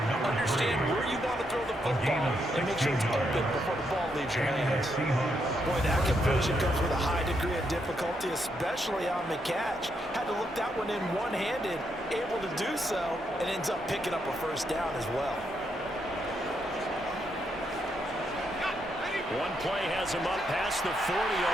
Understand where you want to throw the football. football and make sure it's open before the ball leaves your hands. Boy, that conversion comes with a high degree of difficulty, especially on the catch. Had to look that one in one-handed, able to do so, and ends up picking up a first down as well. One play has him up past the 40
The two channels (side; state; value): both; normal; correlation 0.79